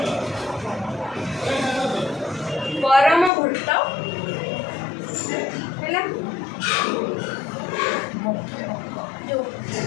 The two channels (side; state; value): right; drops out; at 3.3 s